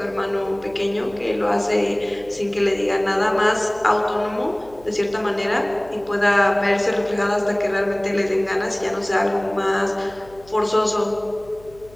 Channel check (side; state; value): left; noise; hum, 24 dB below the sound